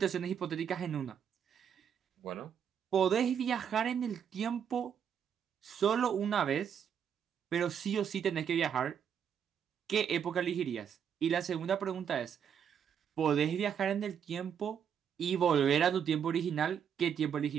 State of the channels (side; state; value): left; quieter; 8.1 dB